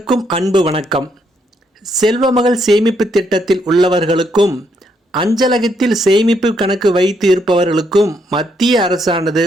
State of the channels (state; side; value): normal; both; correlation 0.75